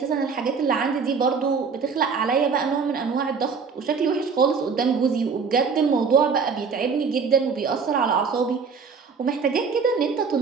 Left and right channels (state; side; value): quieter; left; 5.5 dB